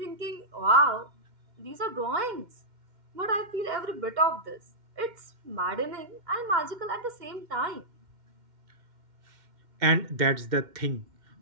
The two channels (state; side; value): late; left; 2.1 ms